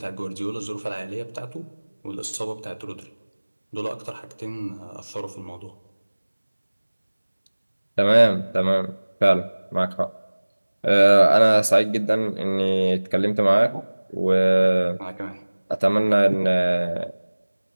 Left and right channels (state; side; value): inverted; both; correlation -1.00